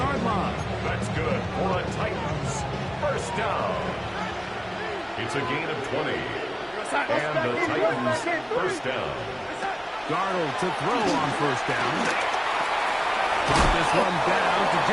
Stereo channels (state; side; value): identical; both; correlation 1.00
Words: line. That's good for a Titans first down. It's a gain of 20. And the Titans first down. Darnold to throw on first down. Brought this one down to